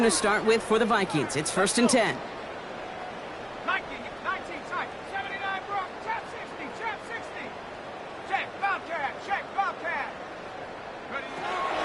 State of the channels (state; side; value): identical; both; correlation 1.00